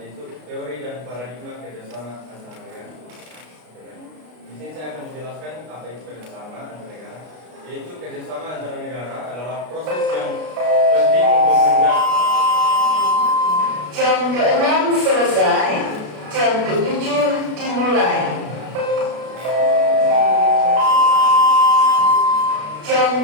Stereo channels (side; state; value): left; late; 33 ms